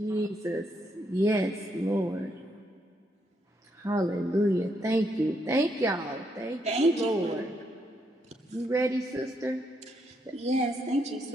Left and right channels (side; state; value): both; normal; correlation 0.77